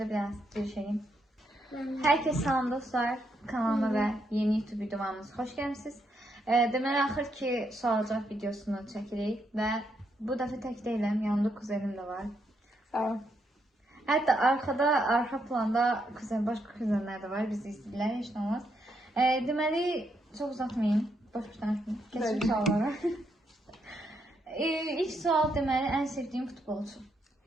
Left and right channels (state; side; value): normal; both; correlation 0.78